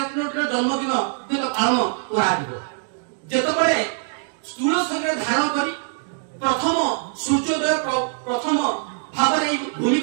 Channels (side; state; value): left; silent; 64 dB below the other